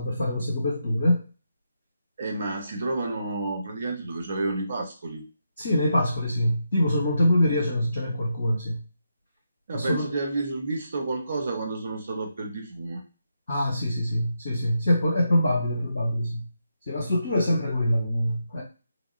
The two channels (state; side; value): inverted; both; correlation -0.83